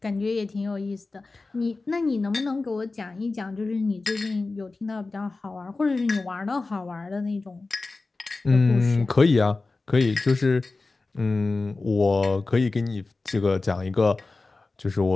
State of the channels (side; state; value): right; quieter; 3.6 dB